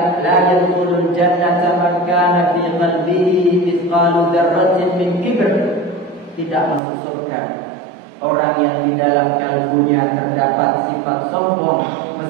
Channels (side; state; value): left; drops out; at 6.8 s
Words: "La yadkhulul jannata man kana fi qalbihi mithqalu dzarratin min kibr." Tidak masuk surga orang yang di dalam kalbunya terdapat sifat sombong